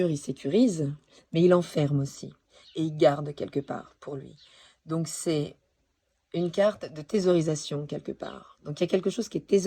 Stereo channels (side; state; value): both; identical; correlation 1.00